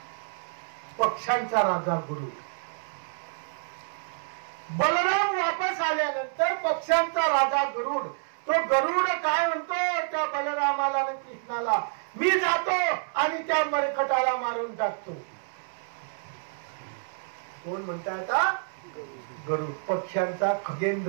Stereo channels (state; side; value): silent; left; 59 dB below the other